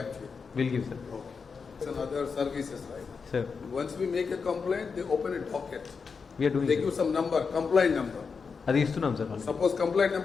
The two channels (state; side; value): quieter; right; 5.4 dB